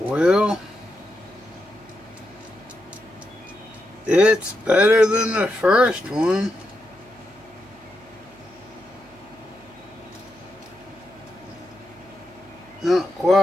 it's better than the first one. Not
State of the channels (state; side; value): noise; right; hum, 29 dB below the sound